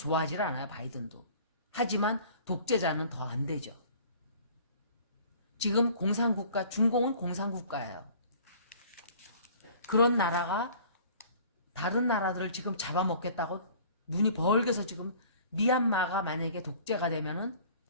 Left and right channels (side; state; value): both; inverted; correlation -0.49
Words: 않아요, 바이든도. 하지만 독재자는 더 안 되죠. 지금 공산국가, 중공은 공산국가예요. 그런 나라가 다른 나라들을 지금 잡아먹겠다고 눈이 벌게서 지금 미얀마가 만약에 독재가 되면은